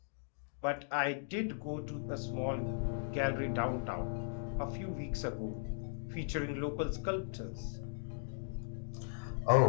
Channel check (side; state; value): right; silent; digital silence